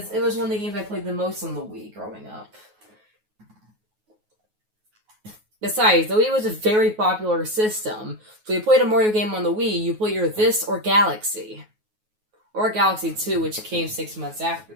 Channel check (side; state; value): left; late; 9.4 ms